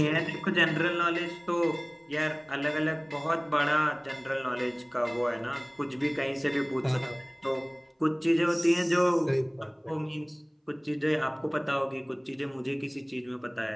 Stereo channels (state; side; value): identical; both; correlation 1.00